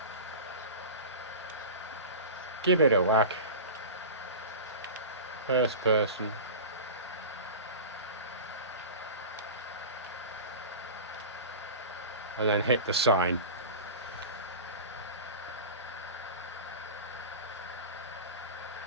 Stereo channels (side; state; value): both; inverted; correlation -0.31